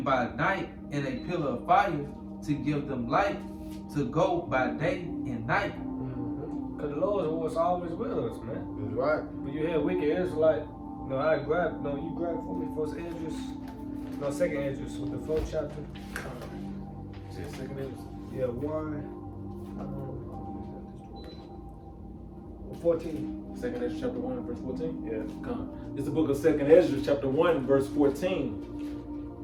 by night in a pillar of fire to give them light to go by day and night. Because the Lord was always with us, man. That's right. When you hear wicked Israelite, you grab for me first Esdras, second Esdras with the 4th chapter. Second Esdras. Yeah, 14. Second Ezra chapter 1 verse 14? Yeah. Come. It's the book of Second Ezra chapter 1 verse 14.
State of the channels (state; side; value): identical; both; correlation 1.00